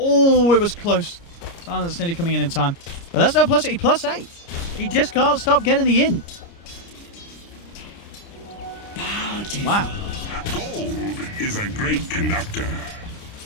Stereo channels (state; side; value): late; right; 29 ms